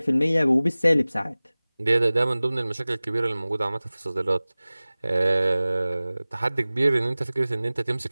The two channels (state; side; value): inverted; both; correlation -0.98